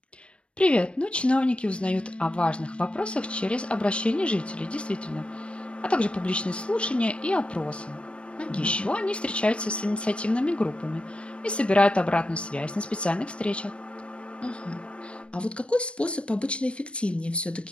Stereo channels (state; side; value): late; right; 0.059 ms